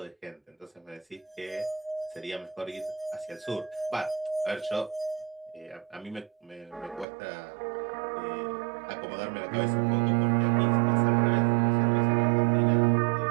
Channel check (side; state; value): left; drops out; at 7.1 s